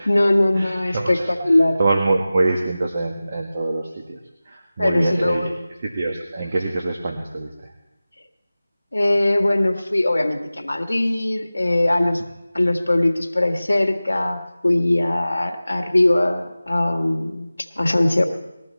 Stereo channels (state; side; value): inverted; both; correlation -0.96